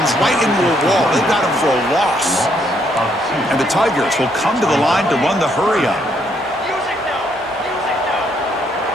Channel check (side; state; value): both; normal; correlation 0.72